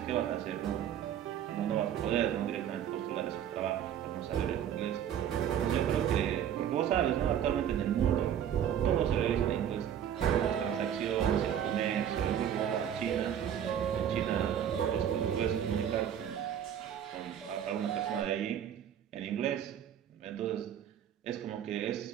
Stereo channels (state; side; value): quieter; left; 9.6 dB